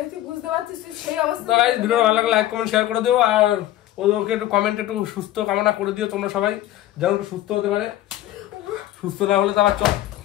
বুঝতে পারছিস তুই সেই অবস্থা। তো গাইস, ভিডিও ভালো লাগলে লাইক কমেন্ট শেয়ার করে দিও, আর ওকে একটু কমেন্টে একটু সুস্থ কামনা করে দিও তোমরা সবাই, যেন একটু সুস্থ হতে পারে। সুস্থ না হলে তো আবার চল।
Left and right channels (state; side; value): quieter; right; 14.0 dB